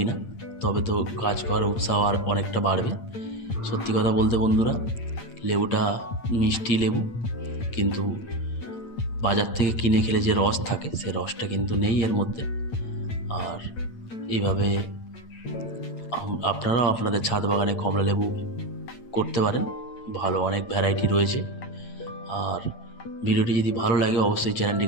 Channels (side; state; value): right; late; 8.8 ms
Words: তবে তো গাছ করার উৎসাহ আর অনেকটা বাড়বে। সত্যি কথা বলতে বন্ধুরা, লেবুটা মিষ্টি লেবু, কিন্তু বাজার থেকে কিনে খেলে যে রস থাকে, সে রসটা কিন্তু নেই এর মধ্যে। আর এইভাবে আপনারাও আপনাদের ছাদ বাগানে কমলা লেবু করতে পারেন, ভালো অনেক ভ্যারাইটি রয়েছে। আর ভিডিওটি যদি ভালো লাগে, অবশ্যই